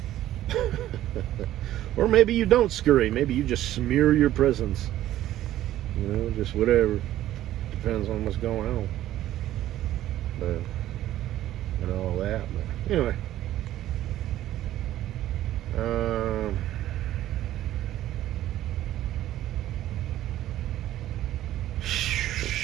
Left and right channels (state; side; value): quieter; left; 13.5 dB